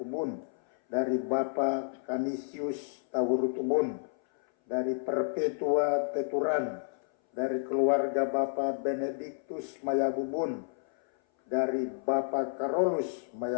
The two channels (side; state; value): right; silent; 57 dB below the other